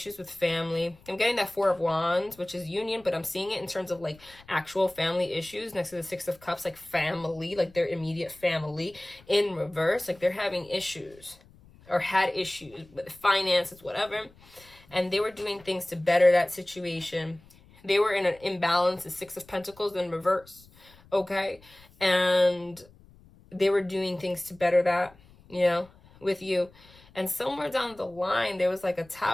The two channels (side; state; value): left; noise; rumble, 26 dB below the sound